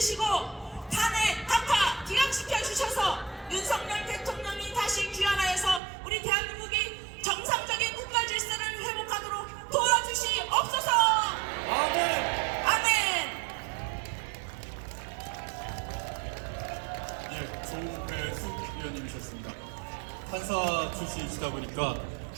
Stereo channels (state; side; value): drops out; left; at 5.8 s